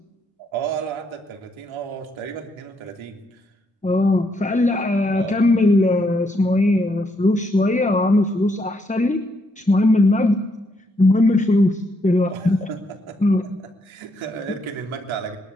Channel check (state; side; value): normal; both; correlation 0.75